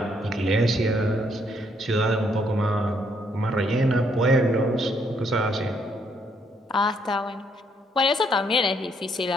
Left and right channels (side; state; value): both; normal; correlation 0.71